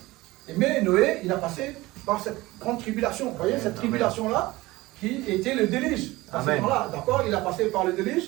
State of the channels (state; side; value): quieter; left; 19.8 dB